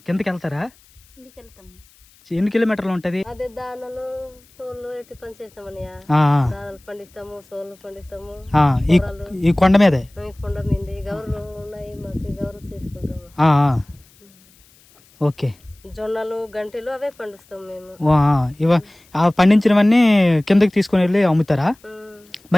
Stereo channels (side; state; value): left; noise; hiss, 29 dB below the sound